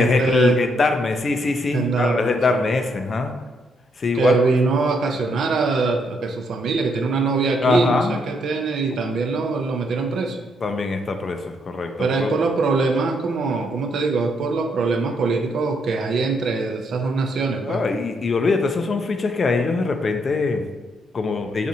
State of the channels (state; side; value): normal; both; correlation 0.74